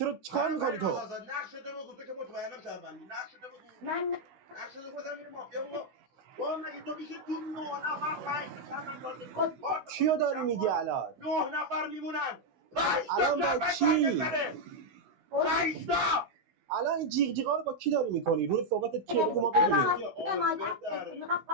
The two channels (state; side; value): late; left; 16 ms